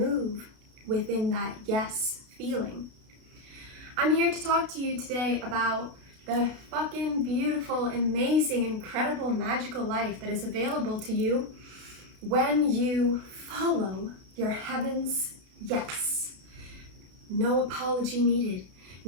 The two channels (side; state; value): left; late; 32 ms